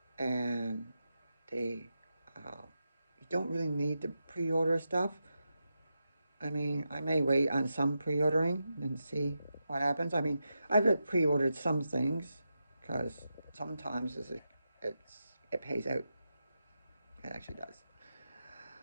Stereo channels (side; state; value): both; inverted; correlation -0.88